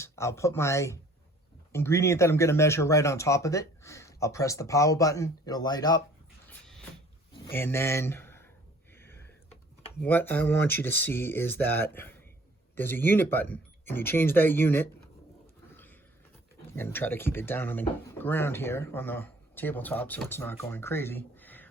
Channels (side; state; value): both; normal; correlation 0.54